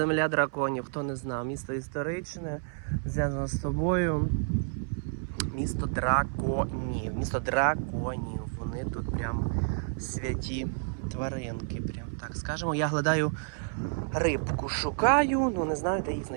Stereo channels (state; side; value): silent; left; 58 dB below the other